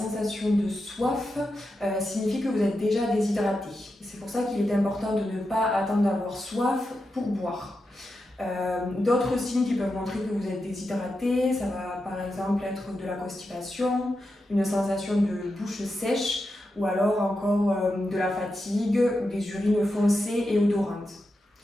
de soif signifie que vous êtes déjà déshydraté. C'est pour ça qu'il est important de ne pas attendre d'avoir soif pour boire. D'autres signes qui peuvent montrer que vous êtes déshydraté, ça va par exemple être de la constipation, une sensation de bouche sèche ou alors encore de la fatigue, des urines foncées et odorantes.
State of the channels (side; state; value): both; normal; correlation 0.88